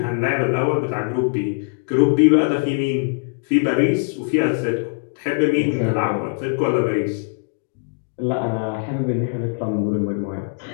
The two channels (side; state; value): right; quieter; 40.0 dB